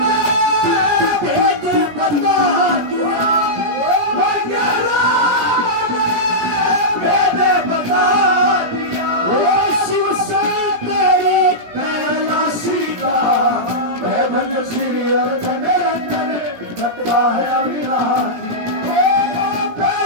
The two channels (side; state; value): left; late; 17 ms